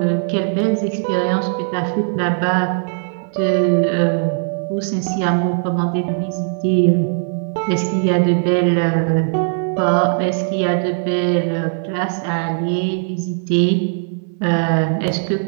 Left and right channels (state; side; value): silent; left; 63 dB below the other